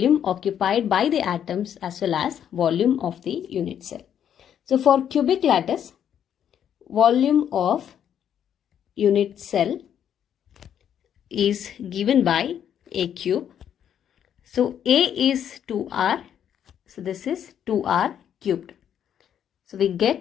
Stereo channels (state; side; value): quieter; right; 9.3 dB